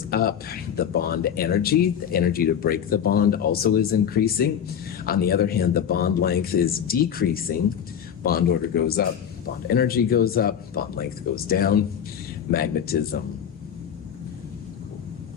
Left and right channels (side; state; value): right; quieter; 8.6 dB